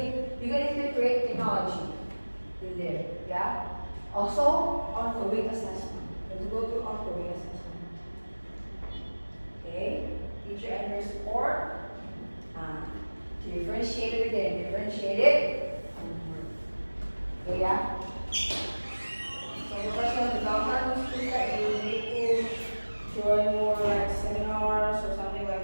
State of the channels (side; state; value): both; inverted; correlation -1.00